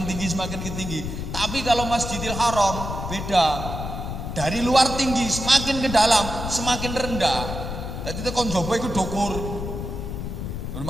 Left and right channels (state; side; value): noise; left; rumble, 6 dB below the sound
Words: tinggi semakin tinggi. Tapi kalau Masjidil Haram beda. Dari luar tinggi semakin ke dalam semakin rendah. Jadi tekan jaba iku dukur.